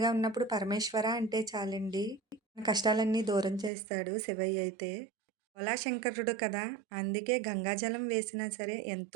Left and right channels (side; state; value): left; drops out; at 3.7 s